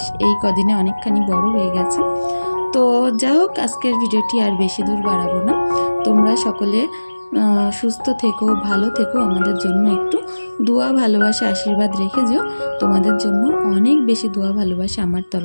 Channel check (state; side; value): inverted; both; correlation -1.00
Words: এই কদিনে অনেকখানি বড় হয়ে গেছে। তো যা হোক, আজকের ভিডিওটি আর বেশি দূর বাড়াবো না। তোমরা সকলে সুস্থ থেকো, ভালো থেকো, আমাদের জন্য একটু দোয়া ভালোবাসা আশীর্বাদ রেখে যেও। তোমাদের জন্য অনেক বেশি দোয়া ভালোবাসা আমার